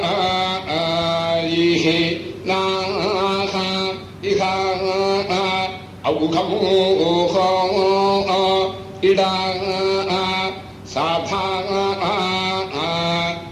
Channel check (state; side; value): identical; both; correlation 1.00